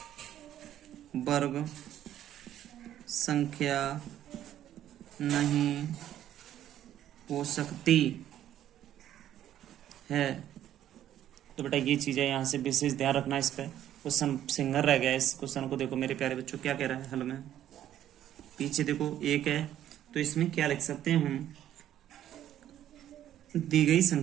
वर्ग संख्या नहीं हो सकती है। तो बेटा ये चीज़ें यहाँ से विशेष ध्यान रखना, इस पर क्वेश्चन सिंगल रह गया। इस क्वेश्चन को देखो मेरे प्यारे बच्चों क्या कह रहा है हल में, पीछे देखो 1 है, तो इसमें क्या लिख सकते हैं हम, दी गई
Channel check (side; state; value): left; quieter; 11.6 dB